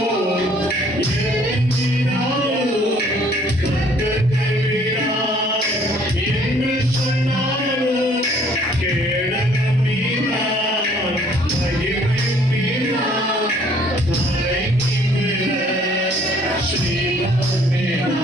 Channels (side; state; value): both; normal; correlation 0.59